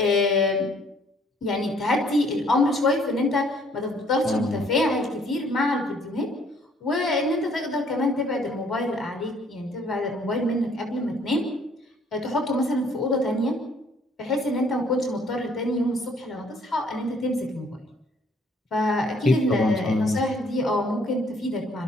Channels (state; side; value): normal; both; correlation 0.61